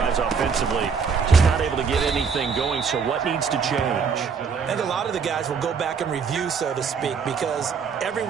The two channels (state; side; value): quieter; left; 5.9 dB